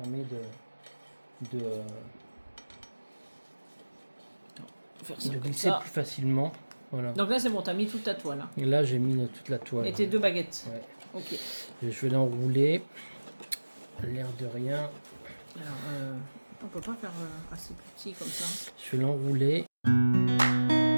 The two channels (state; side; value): inverted; both; correlation -1.00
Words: Faire ça de comme glisser ça. plus facilement. Voilà. Donc là c'est bon, t'as mis toute ta toile. Hein. Et là j'ai mis toute la toile. Et tes 2 baguettes. Ouais. Ok. Et je vais l'enrouler. L'air de rien. Alors, on peut pas faire assez petit comme ça. Je vais l'enrouler.